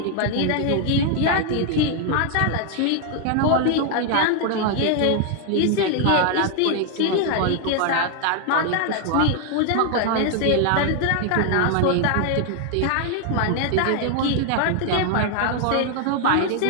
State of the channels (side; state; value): both; different; correlation 0.00